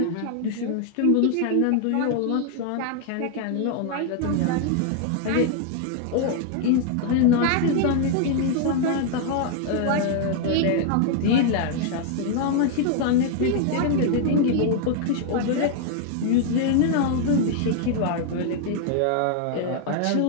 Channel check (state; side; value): different; both; correlation 0.00